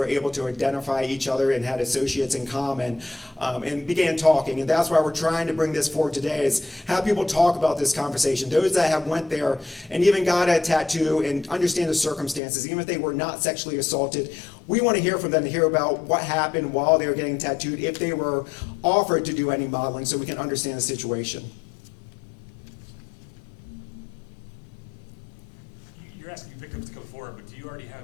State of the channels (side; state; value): right; drops out; at 12.4 s